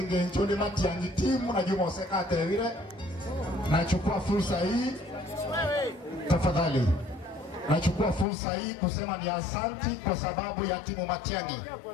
nchoni Matiang'i timu na Juma Osekate vile. Nachukua fursa hii tafadhali. Nachukua fursa hii kusema ni asante kwa sababu ya timu Matiang'i.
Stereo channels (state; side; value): drops out; right; at 8.2 s